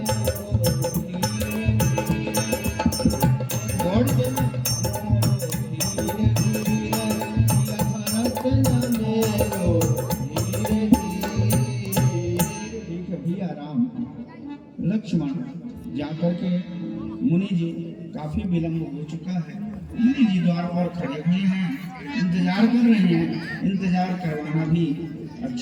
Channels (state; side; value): identical; both; correlation 1.00